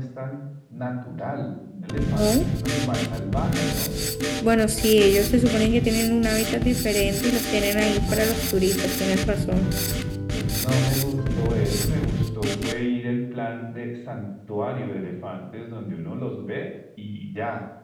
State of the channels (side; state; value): both; identical; correlation 1.00